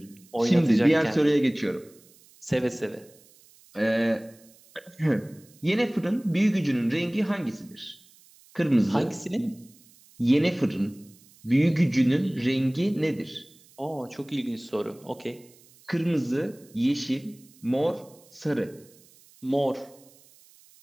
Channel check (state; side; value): noise; right; hiss, 27 dB below the sound